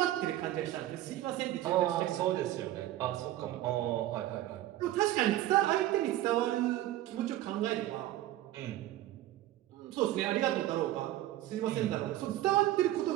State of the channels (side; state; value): left; quieter; 14.3 dB